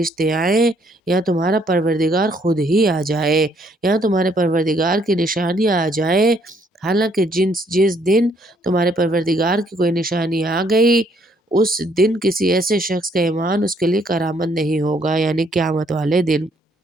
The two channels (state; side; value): normal; both; correlation 0.68